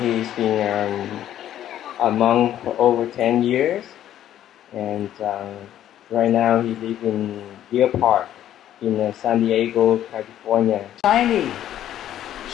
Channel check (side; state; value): right; quieter; 11.6 dB